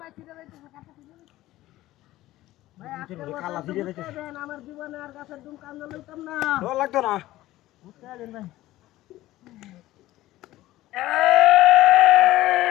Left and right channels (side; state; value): right; quieter; 16.1 dB